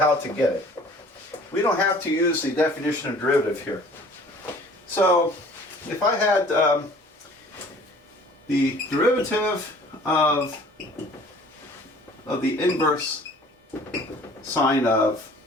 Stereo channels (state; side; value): normal; both; correlation 0.51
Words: to get it. We don't have to use the definition of derivative here. So if I had the derivative of the inverse sine of